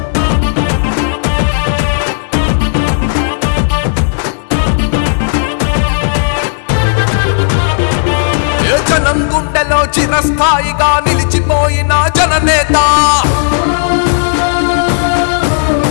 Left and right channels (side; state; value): right; silent; digital silence